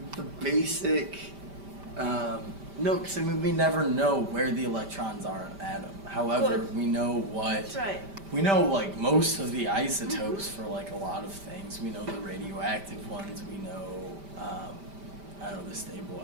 basic. No, because I mean we never know where the electrons are in an atom. However, Good. we know what. That's right. We know most of the isotopes for a lot of things. We know the radioactive ones. We know I don't know, the stable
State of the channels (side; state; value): left; late; 5.1 ms